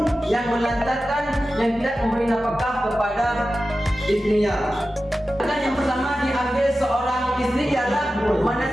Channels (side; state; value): both; normal; correlation 0.94